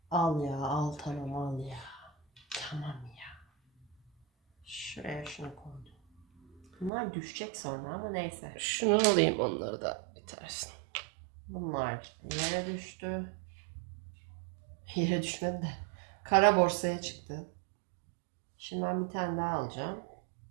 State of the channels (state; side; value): drops out; left; at 6.9 s